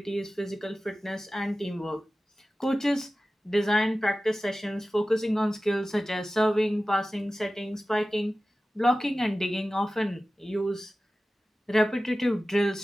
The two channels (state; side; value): normal; both; correlation 0.95